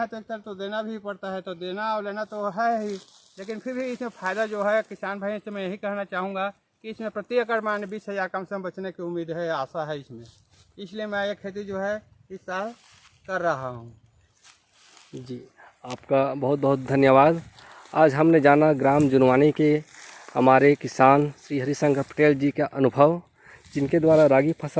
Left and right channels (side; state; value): both; identical; correlation 1.00